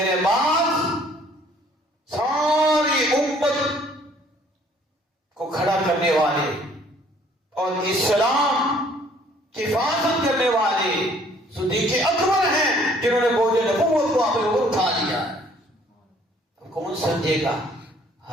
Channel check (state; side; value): normal; both; correlation 0.59